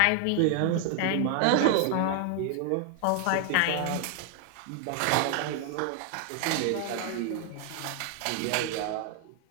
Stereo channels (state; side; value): different; both; correlation 0.00